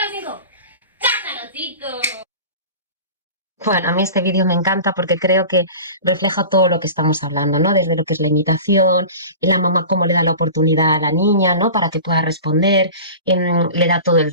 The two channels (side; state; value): both; inverted; correlation -0.36